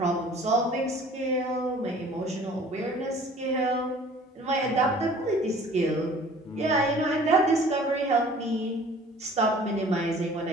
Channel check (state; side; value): normal; both; correlation 0.49